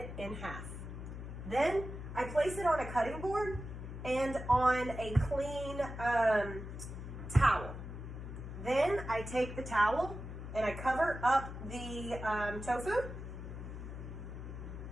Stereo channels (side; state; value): left; noise; hum, 9 dB below the sound